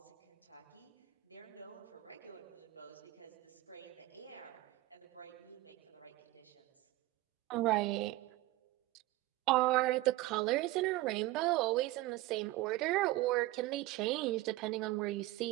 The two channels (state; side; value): quieter; left; 17.9 dB